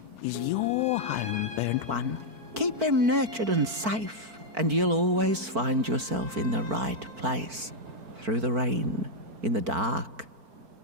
is your home, burnt one. Keep him nurtured and safe, and you'll always find yourself in the right place. Through the rain, in the dark,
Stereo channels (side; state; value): left; late; 4.5 ms